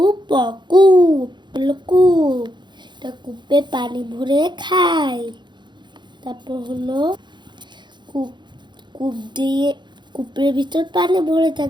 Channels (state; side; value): late; left; 0.22 ms